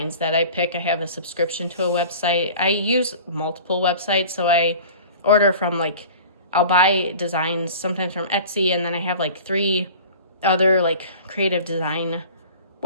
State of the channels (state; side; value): inverted; both; correlation -0.41